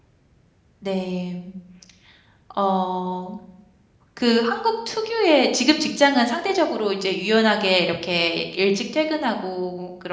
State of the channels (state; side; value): identical; both; correlation 1.00